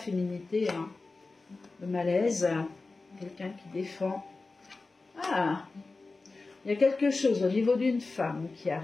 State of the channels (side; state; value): right; quieter; 3.6 dB